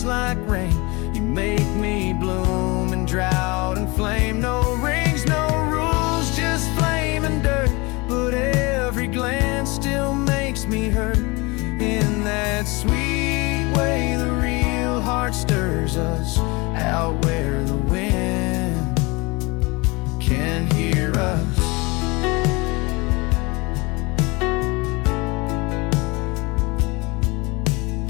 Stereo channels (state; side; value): quieter; right; 25.7 dB